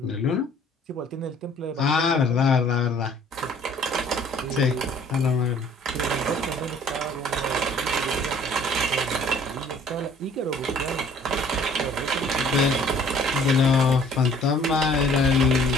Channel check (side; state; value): both; normal; correlation 0.55